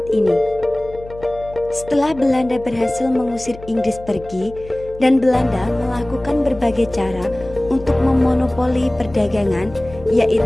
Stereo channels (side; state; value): left; noise; hum, 17 dB below the sound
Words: ini. Setelah Belanda berhasil mengusir Inggris pergi, dan Belanda melakukan berbagai cara untuk memonopoli perdagangan,